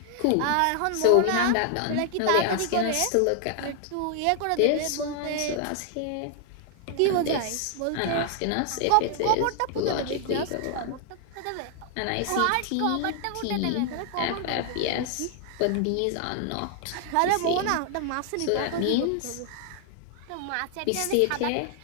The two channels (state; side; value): different; both; correlation 0.00